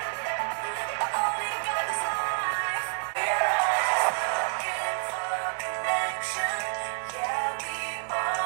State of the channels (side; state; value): left; silent; 59 dB below the other